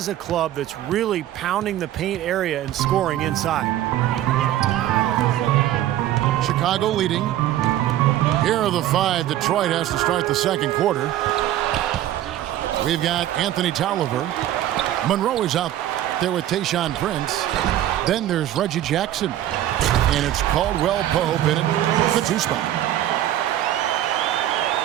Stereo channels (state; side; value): quieter; left; 12.8 dB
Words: a club that's really pounding the paint area and scoring inside. Chicago leading. Here are the 5 Detroit has to start the second quarter. We've got Anthony Tolliver. Monroe is out there with Tayshaun Prince. Then there's Reggie Jackson. And it's Caldwell Pope in it, the 2 spot.